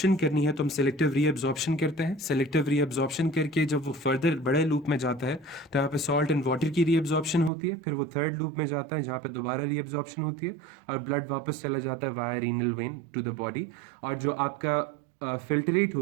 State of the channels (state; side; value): drops out; left; at 7.5 s